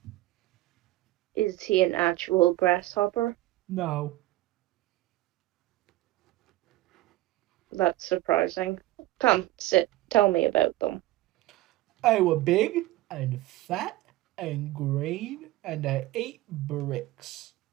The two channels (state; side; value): quieter; left; 17.0 dB